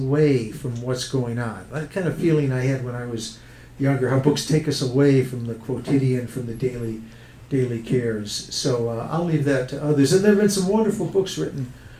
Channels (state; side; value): identical; both; correlation 1.00